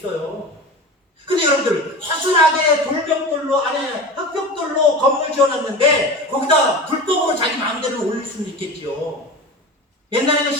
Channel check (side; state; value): both; normal; correlation 0.31